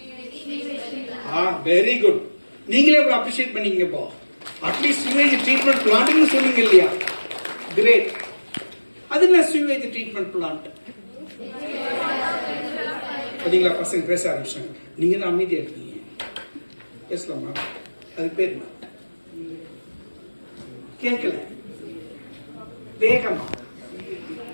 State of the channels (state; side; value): inverted; both; correlation -1.00